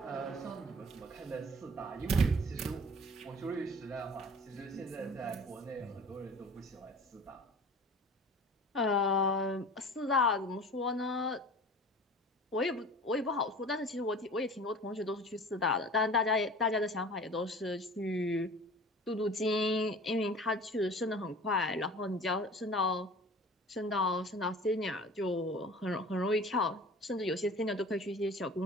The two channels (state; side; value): normal; both; correlation 0.42